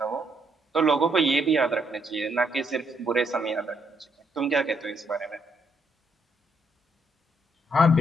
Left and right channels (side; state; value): both; normal; correlation 0.74